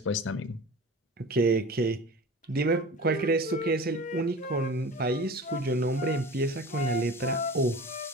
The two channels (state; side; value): normal; both; correlation 0.36